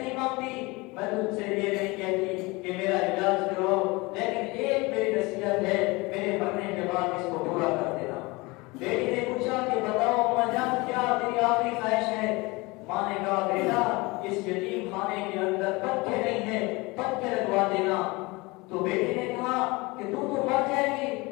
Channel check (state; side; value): quieter; right; 24.2 dB